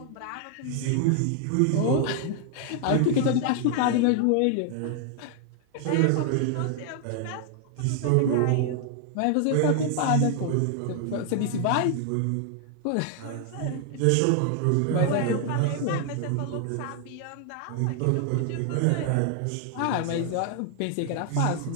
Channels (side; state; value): both; different; correlation 0.00